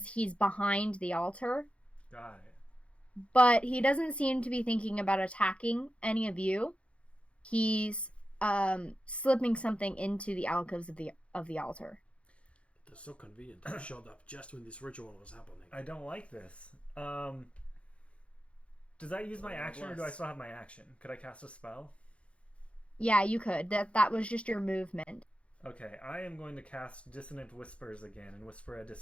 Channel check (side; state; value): right; late; 0.061 ms